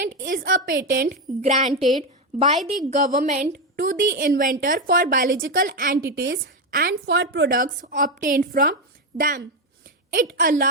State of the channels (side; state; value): both; normal; correlation 0.10